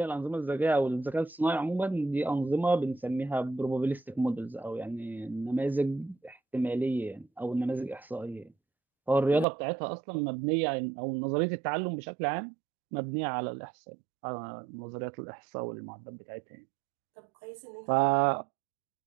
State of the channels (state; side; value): drops out; left; at 9.5 s